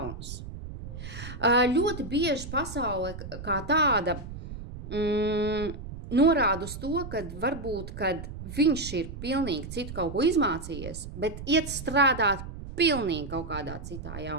Ļoti bieži pasaule kā tāda norāda uz to, ka varbūt, kad viņš ir pilnīgi citu kaut ko izmācījies, bet iet strādāt pilnīgi kaut kādā citā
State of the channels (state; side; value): noise; right; rumble, 10 dB below the sound